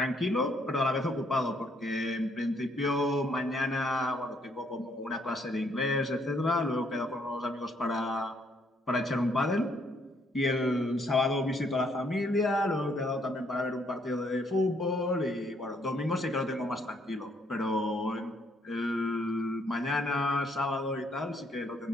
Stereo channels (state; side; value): normal; both; correlation 0.69